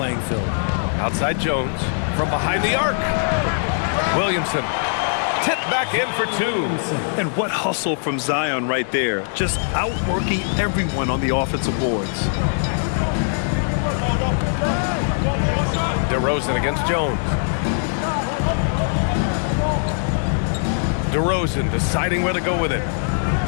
field. Outside Jones from behind the arc. Williamson tipped back in for 2. And what hustle from Zion right there. Just outworking everyone on the offensive boards. DeRozan against Jones. DeRozan deciding where to go with it.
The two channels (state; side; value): silent; right; 65 dB below the other